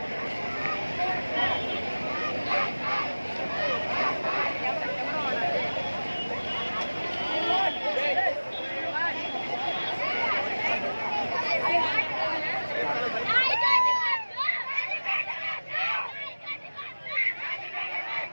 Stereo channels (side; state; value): both; inverted; correlation -1.00